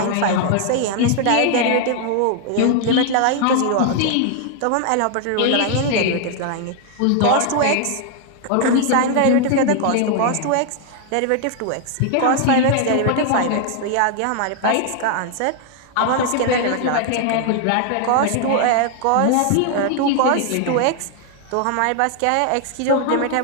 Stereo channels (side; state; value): both; different; correlation 0.00